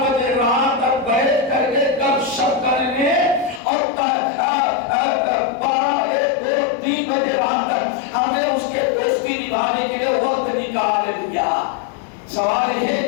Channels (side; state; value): right; drops out; at 3.6 s